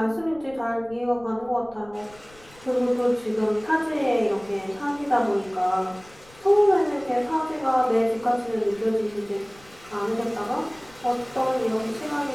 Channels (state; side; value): noise; left; rumble, 26 dB below the sound